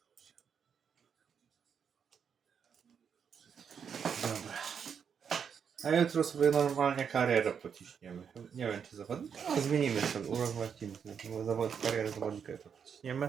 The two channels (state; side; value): quieter; left; 7.2 dB